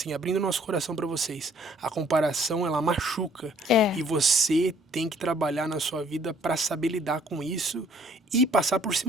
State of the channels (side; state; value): both; normal; correlation 0.60